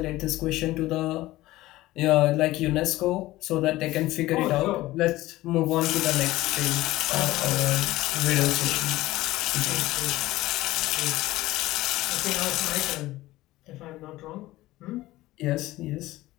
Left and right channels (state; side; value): quieter; right; 17.3 dB